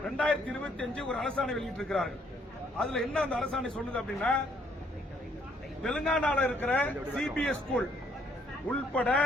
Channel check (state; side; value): normal; both; correlation 0.67